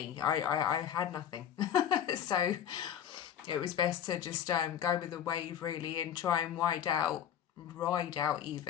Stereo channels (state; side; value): quieter; right; 9.7 dB